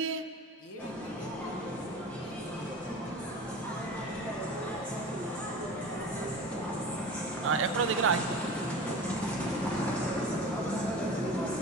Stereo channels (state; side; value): normal; both; correlation 0.35